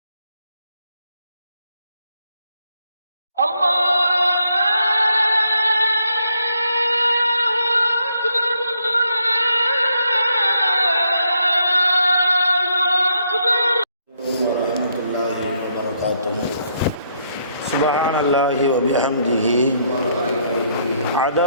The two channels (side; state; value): both; inverted; correlation -0.73